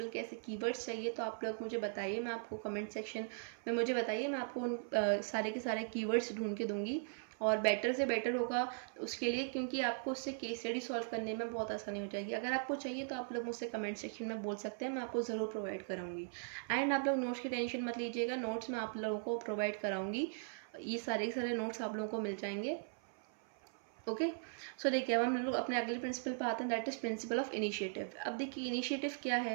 के ऐसे कीवर्ड्स चाहिए तो आप लोग मुझे बताइए, मैं आपको कमेंट सेक्शन में मुझे बताइए, मैं आपको उन सारे के सारे कीवर्ड्स ढूंढ के दूंगी, और बेटर से बेटर होगा उसके लिए, क्योंकि आपको उससे केस स्टडी सॉल्व करने में बहुत आसानी हो जाएगी। अगर आपको चाहिए तो आप लोग मुझसे कमेंट सेक्शन में बोल सकते हैं, मैं आपको ज़रूर प्रोवाइड कराऊंगी। एंड आप लोग नोट्स की टेंशन मत लीजिएगा, नोट्स मैं आप लोगों को प्रोवाइड कराऊंगी, ये सारे के सारे नोट्स आप लोगों को मिल जाएंगे। ओके, सो देखिए अब हम लोग अपने अगले प्रिंसिपल पर आते हैं, that is principle of initiative. अब देखिए इनिशिएटिव क्या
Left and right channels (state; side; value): silent; left; 52 dB below the other